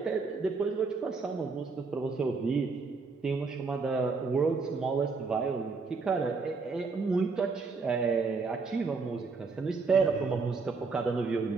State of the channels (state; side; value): quieter; left; 4.4 dB